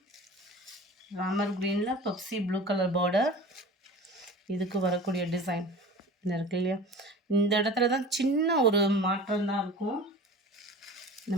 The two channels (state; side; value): normal; both; correlation 0.38